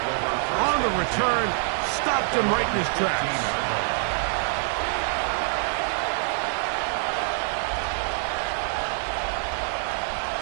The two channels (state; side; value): silent; left; 61 dB below the other